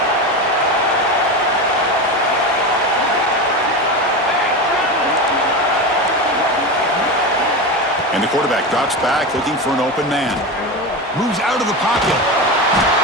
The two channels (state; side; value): normal; both; correlation 0.21